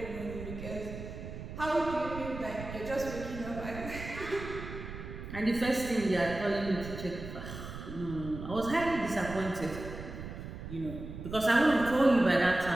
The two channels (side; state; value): right; noise; rumble, 10 dB below the sound